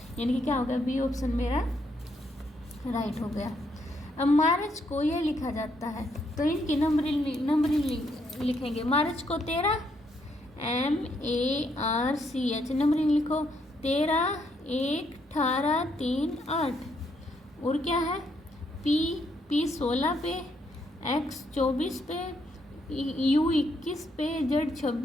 यानी कि क्या हो गया? बी ऑप्शन मेरा राइट हो गया। अब मार्च को ये लिखा जाता है, तो इनकी नंबरिंग लिखेंगे। मार्च को 13 MARCH, नंबरिंग लिखो 13 1 18 3 8, और क्या है? P 16 पे, X 24 पे, U 21 पे, Z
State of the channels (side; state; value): both; normal; correlation 0.74